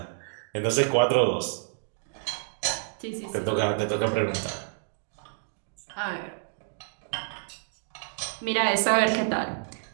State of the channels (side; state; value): left; silent; digital silence